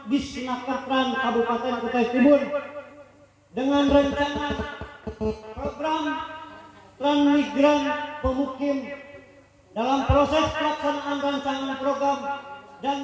Disnakertran Kabupaten Kutai Timur dengan rencana program transmigran pemukim dalam proses pelaksanaan rancangan program dan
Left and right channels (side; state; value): both; identical; correlation 1.00